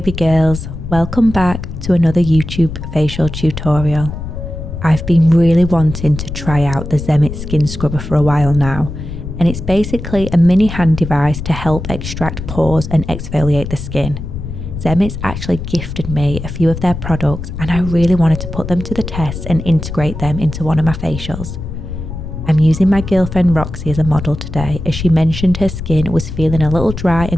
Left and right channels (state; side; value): noise; left; rumble, 8 dB below the sound